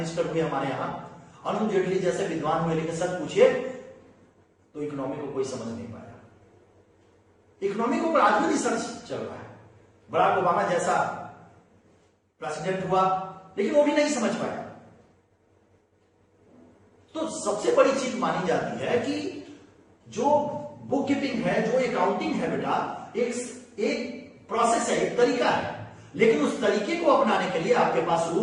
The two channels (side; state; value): both; identical; correlation 1.00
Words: हुए हमारे यहाँ, अरुण जेटली जैसे विद्वान हुए, लेकिन सच पूछिए तो इकोनॉमी को कोई समझ नहीं पाया। इकोनॉमी को आज भी रिसर्च चल रहा है। बराक ओबामा जैसा प्रेसिडेंट हुआ लेकिन वो भी नहीं समझ पाया। तो सबसे बड़ी चीज मानी जाती है कि जो बुक कीपिंग है, जो अकाउंटिंग है बेटा, एक प्रोसेस है, एक तरीका है। लेकिन उस तरीके को अपनाने के लिए आपके पास